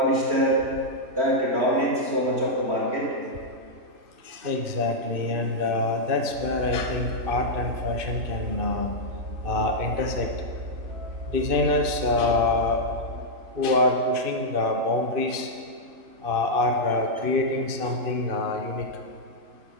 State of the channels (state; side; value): late; left; 2.6 ms